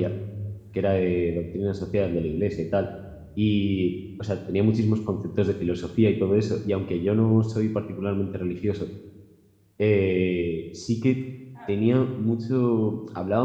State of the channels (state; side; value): identical; both; correlation 1.00